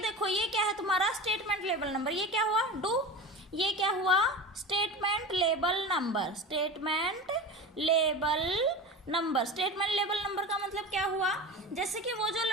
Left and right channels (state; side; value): normal; both; correlation 0.30